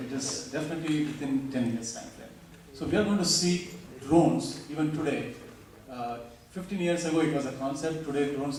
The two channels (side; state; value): both; identical; correlation 1.00